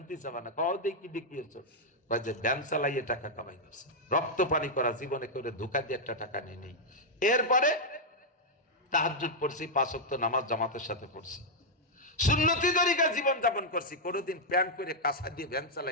চাবা না। কও দেখি দেখিয়েছ যে ব্যান চালাইয়ে টাকা কামাই করছে, রক্ত পানি করা জীবনে করে ধোকা দিয়ে একটা টাকা নিয়ে নেই। এরপরে তাহাজ্জুদ পড়ছি, 5 ওয়াক্ত নামাজ জামাতের সাথে পড়ছি, সুন্নতি তরিকা জীবন যাপন করছি। কোনোদিন প্যান্ট করে কাঁচা দিয়ে ভ্যান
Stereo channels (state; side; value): normal; both; correlation -0.04